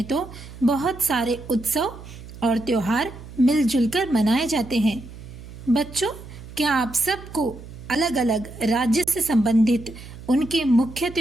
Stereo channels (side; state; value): right; noise; hum, 15 dB below the sound